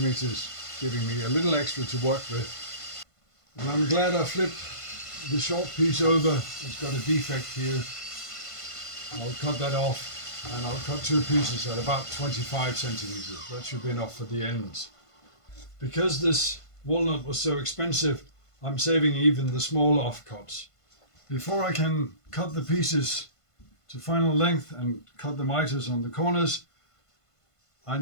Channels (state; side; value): late; right; 1.5 ms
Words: giving me a little extra to work with. And I'm glad I flipped the short piece over. It's got a defect here. I'll cut that off, and I'll cut two pieces at about 25 centimeters. That should be enough for the ends. Because this walnut was so expensive, I'm saving even the small offcuts. Before I can cut the pieces to final length and cut the miters on the corners, I